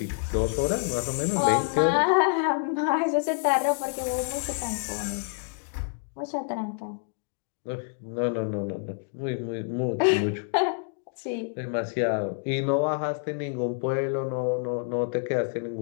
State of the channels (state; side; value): silent; right; digital silence